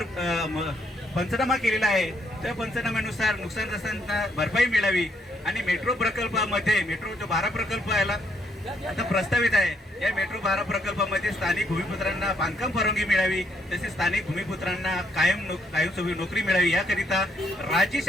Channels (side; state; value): both; normal; correlation 0.73